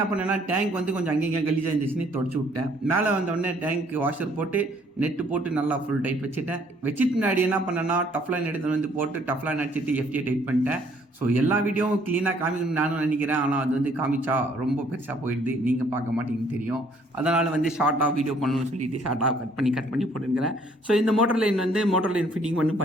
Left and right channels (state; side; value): normal; both; correlation 0.63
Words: பண்ணேன்னா டேங்க் வந்து கொஞ்சம் அங்கேயும் கலீஜாக இருந்துச்சுன்னு தொடச்சி விட்டேன். மேலே வந்தோடனே டேங்க் வாஷர் போட்டு நெட்டு போட்டு நல்லா ஃபுல் டைட் வச்சுட்டேன். வச்சுட்டு முன்னாடி என்ன பண்ணேன்னா டஃப்லைன் எடுத்து வந்து போட்டு டஃப்லைன் அடிச்சுட்டு எஃப்டியை டைட் பண்ணிட்டேன். ஸோ எல்லா வீடியோவும் க்ளீனாக காமிக்கணும்னு நானும் நினைக்கிறேன். ஆனால் அது வந்து காமிச்சா ரொம்ப பெருசாக போயிடுது, நீங்கள் பார்க்க மாட்டீங்கன்னு தெரியும். அதனால் வந்து ஷார்ட்டாக வீடியோ பண்ணணும்னு சொல்லிட்டு ஷார்ட்டாக கட் பண்ணி போட்டுருக்கிறேன். ஸோ இந்த மோட்டர் லைன் வந்து மோட்டர் லைன் ஃபிட்டிங்